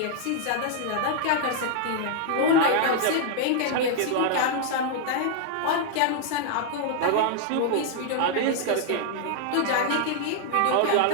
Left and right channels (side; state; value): both; different; correlation 0.00